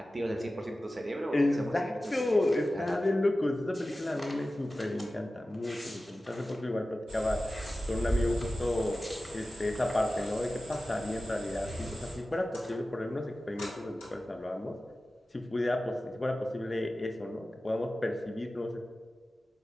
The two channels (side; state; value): both; normal; correlation 0.95